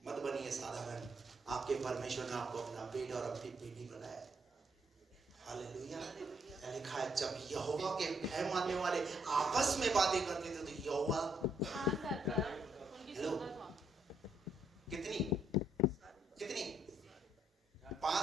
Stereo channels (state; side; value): normal; both; correlation 0.73